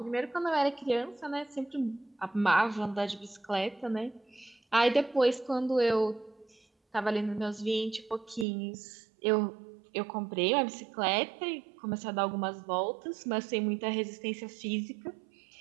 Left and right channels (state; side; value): drops out; left; at 8.5 s